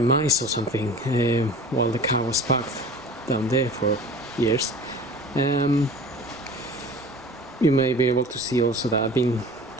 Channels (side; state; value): both; normal; correlation 0.41